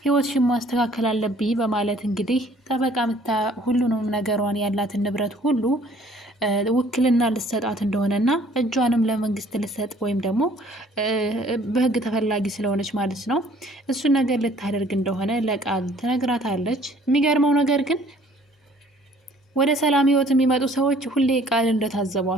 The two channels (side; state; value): both; normal; correlation 0.57